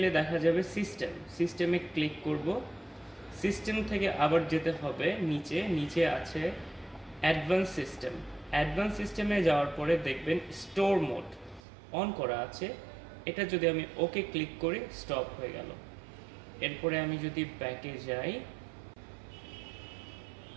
দেখা যাবে সিস্টেমে ক্লিক করব। সিস্টেম থেকে আবার যেতে হবে নিচে আছে অ্যাডভান্স সিস্টেমে যাওয়ার পরে দেখবেন স্টোর মোড অন করা আছে। এটা যদি আমি ওকে ক্লিক করি স্টপ হয়ে গেল। এরপরে আমি যদি ব্যাকে যাই,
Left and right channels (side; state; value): left; drops out; at 11.6 s